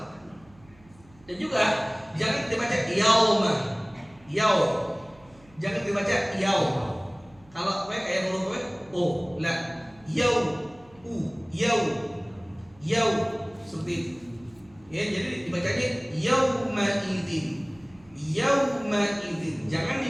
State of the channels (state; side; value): noise; right; hum, 27 dB below the sound